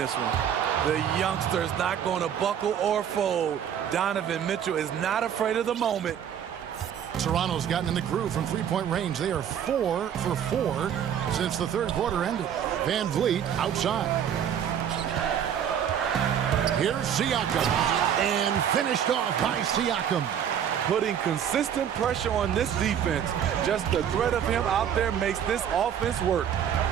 one. The youngster is not going to buckle or fold. Donovan Mitchell is not afraid of the moment. Toronto's gotten in the groove from three-point range. They are 4 for 4 since the third quarter ended. Van Vliet outside. Here's Siakam. And finished off by Siakam. Putting consistent pressure on this defense. Just the threat of him out there makes this offense work.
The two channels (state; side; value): quieter; left; 9.0 dB